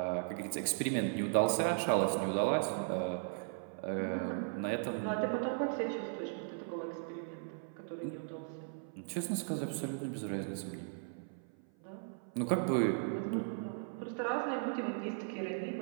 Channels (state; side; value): silent; left; 53 dB below the other